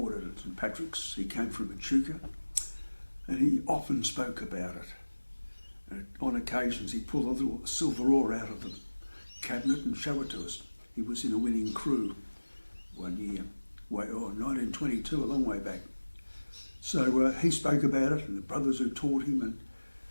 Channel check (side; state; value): both; inverted; correlation -1.00